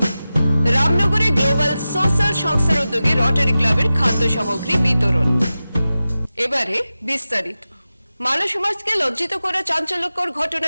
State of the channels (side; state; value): both; inverted; correlation -0.94